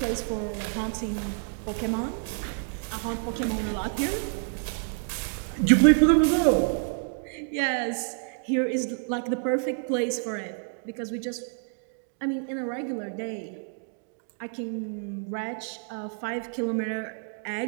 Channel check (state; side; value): silent; left; 59 dB below the other